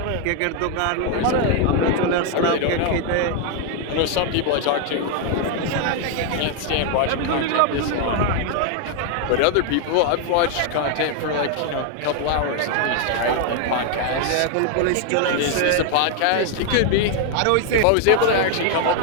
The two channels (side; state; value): both; different; correlation 0.00